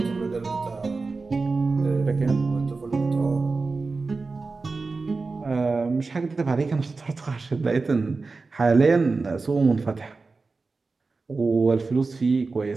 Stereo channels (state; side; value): quieter; left; 4.0 dB